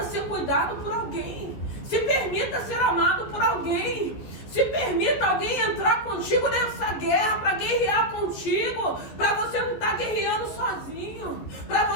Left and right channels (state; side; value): late; right; 14 ms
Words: ser cuidado por alguém. Se permita ser amado por alguém. Se permita alguém entrar contigo nessa guerra, para guerrear contigo, para você não estar guerreando sozinho, para